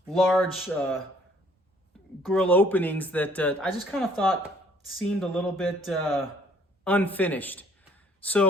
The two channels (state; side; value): normal; both; correlation 0.61